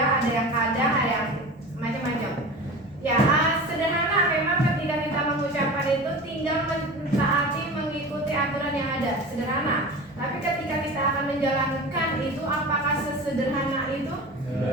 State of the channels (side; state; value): both; normal; correlation 0.33